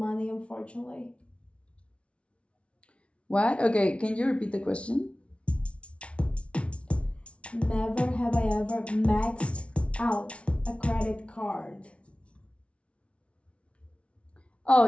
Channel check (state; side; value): late; right; 0.061 ms